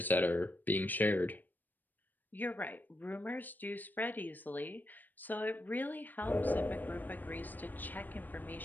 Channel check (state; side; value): late; right; 0.088 ms